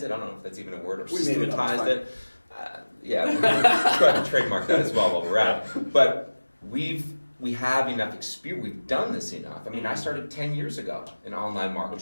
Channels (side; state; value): both; inverted; correlation -1.00